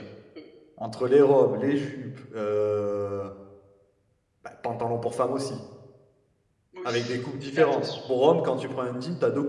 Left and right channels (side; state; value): both; identical; correlation 1.00